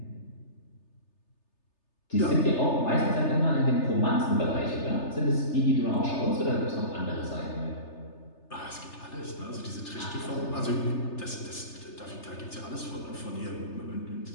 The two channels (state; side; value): late; right; 3.3 ms